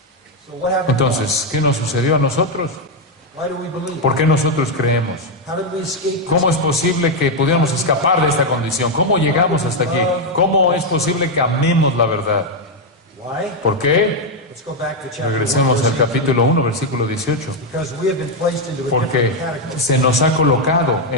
Entonces, ¿qué nos sucedió a nosotros? ¿Por qué nosotros creemos? ¿Cómo es posible que pudiéramos escapar de esta condición? ¿Cómo llegamos hasta aquí? ¿Cómo es posible que amemos la verdad? ¿Por qué? Regresemos al capítulo 1, versículo 18. Porque se nos ha colocado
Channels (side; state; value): both; normal; correlation 0.03